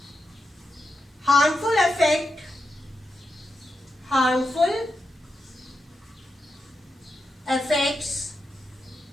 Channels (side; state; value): both; normal; correlation 0.87